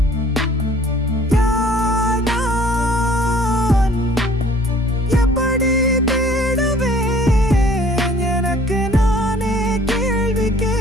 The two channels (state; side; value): normal; both; correlation 0.54